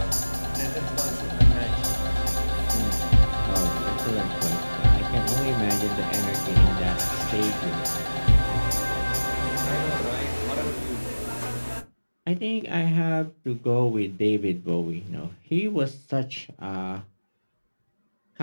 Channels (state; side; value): inverted; both; correlation -1.00